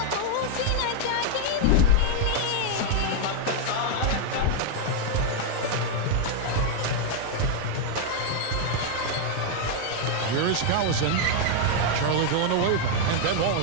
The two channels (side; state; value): both; different; correlation 0.00